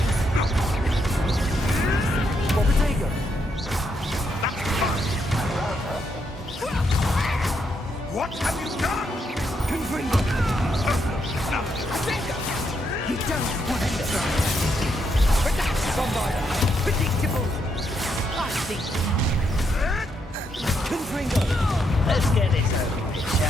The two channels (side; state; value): both; normal; correlation 0.78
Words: Bobbitego. That's fine. What have you done? Confringo. No. You don't want to try. Bombarda. Predictable. I think. Confringo. Let's get this over with,